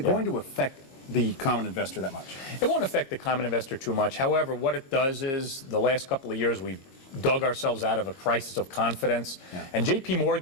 going to affect the common investor that much? It won't affect the common investor too much. However, what it does is the last couple of years we've dug ourselves out of a crisis of confidence. Yeah. And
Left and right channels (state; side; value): late; right; 22 ms